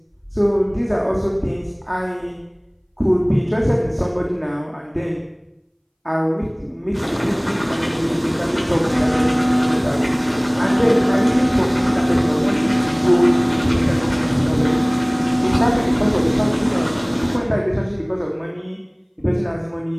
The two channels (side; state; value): both; identical; correlation 1.00